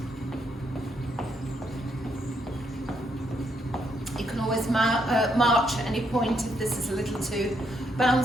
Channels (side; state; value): both; normal; correlation 0.76